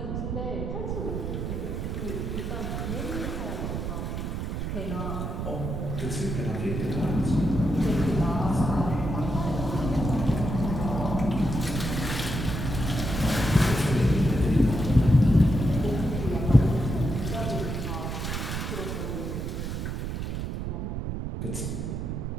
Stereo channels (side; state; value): right; noise; rumble, 3 dB below the sound